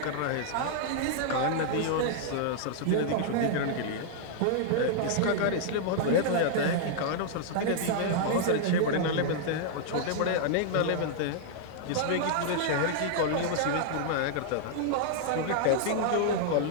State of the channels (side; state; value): both; different; correlation -0.01